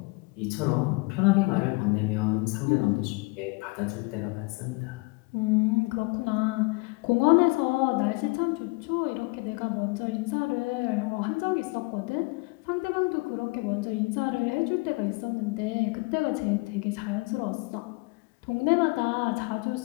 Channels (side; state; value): right; quieter; 27.5 dB